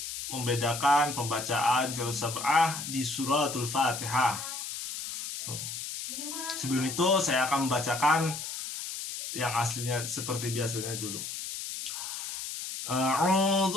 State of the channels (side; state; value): left; noise; hiss, 6 dB below the sound